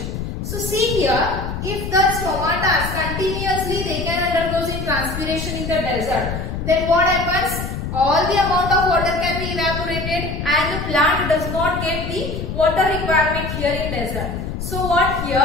So see here, if the stomata continuously they can undergo in transpiration in the desert, then what happens? All the amount of water can be evaporated and the plant does not get the water requirement here in desert. So what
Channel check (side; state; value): left; noise; rumble, 5 dB below the sound